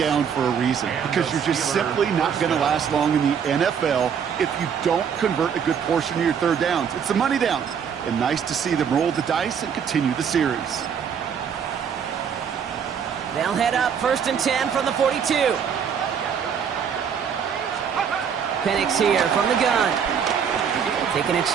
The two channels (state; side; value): quieter; left; 7.4 dB